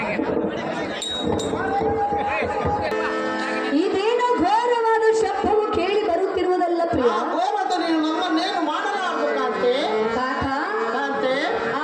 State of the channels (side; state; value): both; identical; correlation 1.00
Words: ಇದೇನೋ ಘೋರವಾದ ಶಬ್ದವು ಕೇಳಿ ಬರುತ್ತಿರುವುದಲ್ಲ ಪ್ರಿಯ. ಆ ಘೋರದ ನೀನು ನಮ್ಮನ್ನೇನು ಮಾಡಲಾರದು ಕಾಂತೆ. ಕಾಂತ, ಕಾಂತೆ,